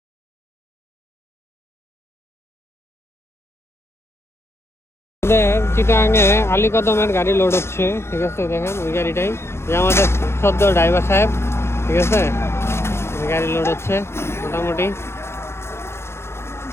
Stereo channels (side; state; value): right; late; 0.12 ms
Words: চিটাগাঙে আলীকদমের গাড়ি লোড হচ্ছে, ঠিক আছে? দেখেন ওই গাড়িটাই, যে আমাদের সদ্য ড্রাইভার সাহেব, ঠিক আছে? গাড়ি লোড হচ্ছে মোটামুটি।